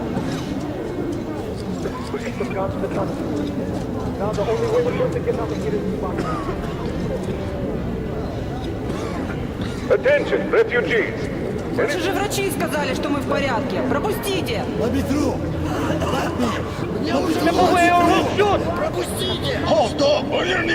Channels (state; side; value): identical; both; correlation 1.00